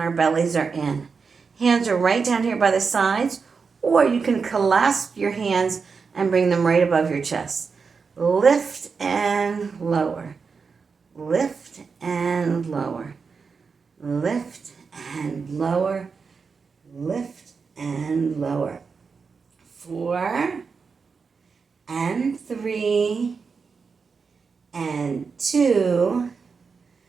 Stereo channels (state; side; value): quieter; left; 5.2 dB